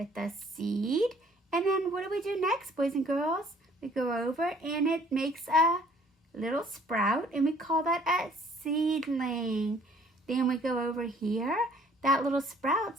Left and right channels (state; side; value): normal; both; correlation 0.58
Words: the seed. And then what do we do next, boys and girls? We go over and it makes a little sprout, and we call that a seedling. Then we go over here. That little sprout